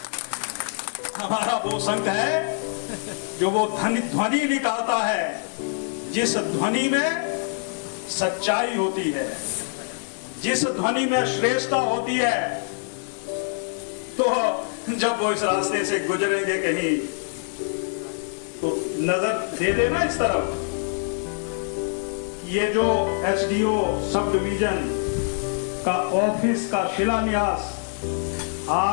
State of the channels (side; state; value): right; silent; 62 dB below the other